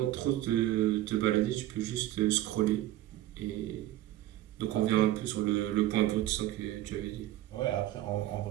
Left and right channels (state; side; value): quieter; left; 14.4 dB